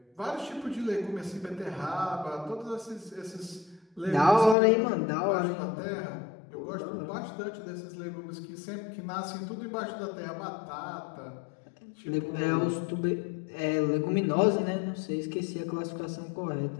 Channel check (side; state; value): right; drops out; at 4.5 s